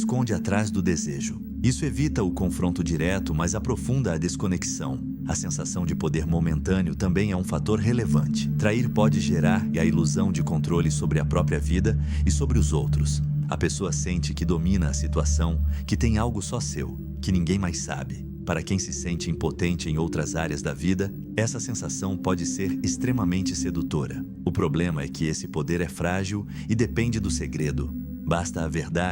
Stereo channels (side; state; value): left; noise; hum, 28 dB below the sound